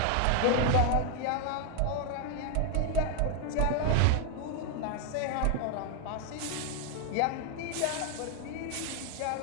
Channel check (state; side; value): different; both; correlation 0.01